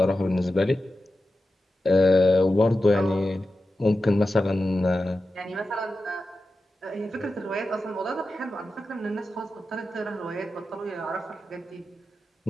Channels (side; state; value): both; normal; correlation 0.92